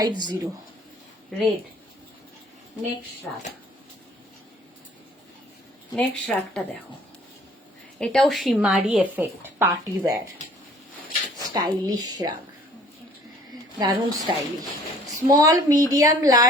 Red. Next shrug, next শ্রাগটা দেখো, এটাও shimmery effect, party wear, stylish shrug, দারুণ স্টাইলিশ। স্মল, মিডিয়াম,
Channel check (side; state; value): both; normal; correlation 0.55